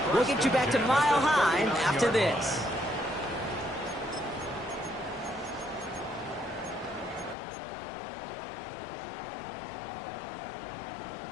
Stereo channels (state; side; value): drops out; right; at 7.4 s